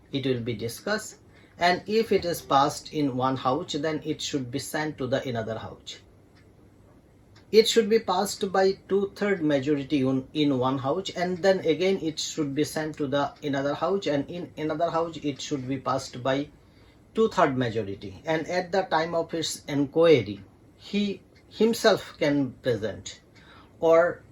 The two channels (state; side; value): identical; both; correlation 1.00